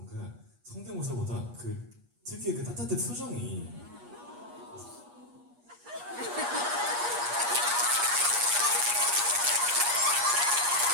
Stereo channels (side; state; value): left; late; 8.4 ms